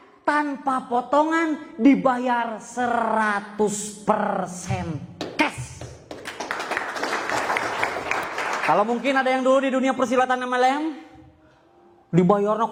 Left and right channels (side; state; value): both; identical; correlation 1.00